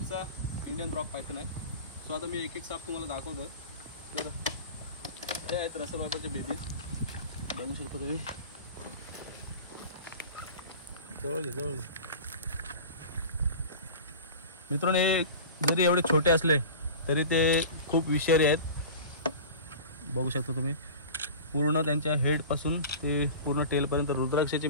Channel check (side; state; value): both; inverted; correlation -0.36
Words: इंडियन रॉक पायथन आहे। सो आता मी एक एक साप तुम्हाला दाखवतो। तर हे आहेत रसल वायपरचे बेबी, बघू शकता तुम्ही। जवळ घे मित्रांनो, हे जरी एवढे छोटे असले तरी ते खूप विषारी आहेत। बघू शकता तुम्ही, पूर्ण त्यांच्या हेड पासून ते पूर्ण टेल पर्यंत रुद्राक्षाची